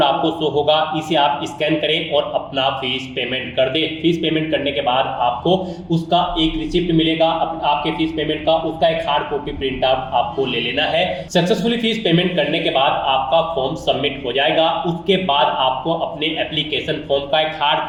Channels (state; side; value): identical; both; correlation 1.00